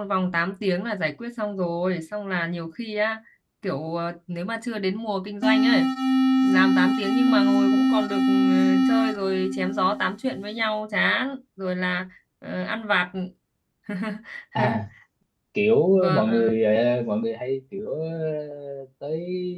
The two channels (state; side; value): identical; both; correlation 1.00